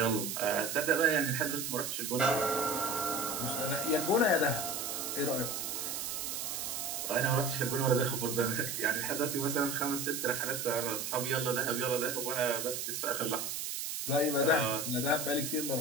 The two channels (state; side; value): noise; right; hiss, 3 dB below the sound